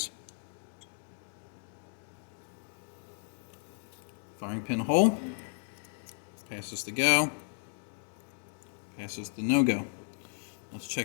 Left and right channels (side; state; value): right; silent; digital silence